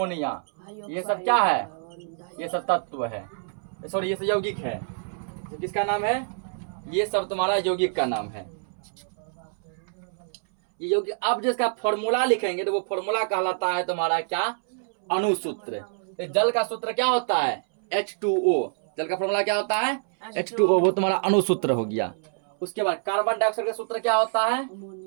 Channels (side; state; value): left; silent; 61 dB below the other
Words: ये सब क्या है? ये सब तत्व है, सॉरी ये सब यौगिक है। किसका नाम है? ये सब तुम्हारा यौगिक का नाम है। ये यौगिक अब जिसका फॉर्मूला लिखेंगे तो वो फॉर्मूला कहलाता है तुम्हारा क्या? अणुसूत्र। तो जल का सूत्र क्या होता है? H2O। जल का फॉर्मूला क्या होता है? H2O। वो तुम्हारा अणुसूत्र हो गया। उसके बाद कार्बन डाइऑक्साइड का सूत्र क्या होता है?